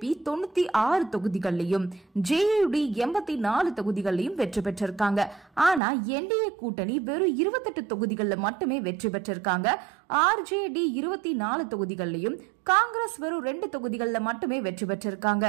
96 தொகுதிகள்லயும், ஜேயுடி 84 தொகுதிகள்லயும் வெற்றி பெற்றிருக்காங்க. ஆனா என்டிஏ கூட்டணி வெறும் 28 தொகுதிகள்ல மட்டுமே வெற்றி பெற்றிருக்காங்க. ஆர்ஜேடி 24 தொகுதிகள்லயும், காங்கிரஸ் வெறும் 2 தொகுதிகள்ல மட்டுமே வெற்றி பெற்றிருக்காங்க.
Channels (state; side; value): drops out; left; at 5.8 s